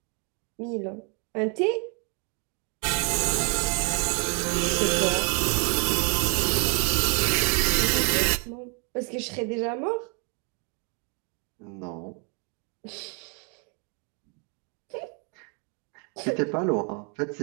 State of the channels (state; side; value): quieter; left; 37.2 dB